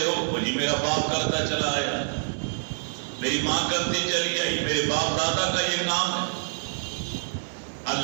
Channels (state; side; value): silent; left; digital silence